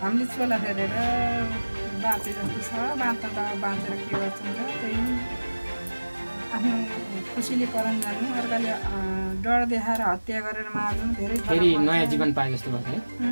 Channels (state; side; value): inverted; both; correlation -1.00